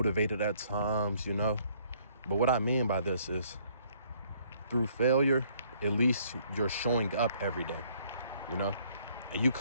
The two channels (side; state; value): both; inverted; correlation -0.63